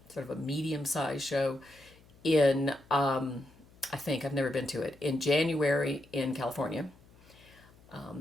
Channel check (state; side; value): noise; left; hum, 26 dB below the sound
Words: sort of a medium-sized show in, I think, I've never been to it, in January in California.